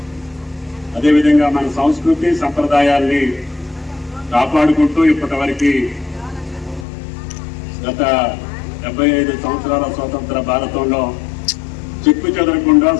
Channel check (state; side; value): drops out; right; at 6.9 s